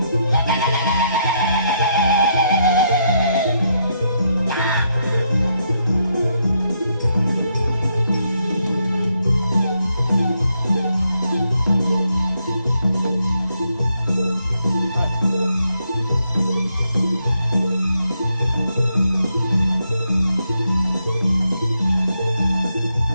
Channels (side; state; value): both; inverted; correlation -0.78